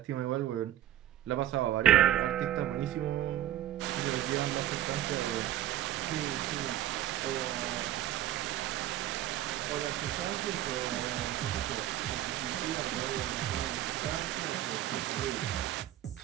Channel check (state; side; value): quieter; left; 12.8 dB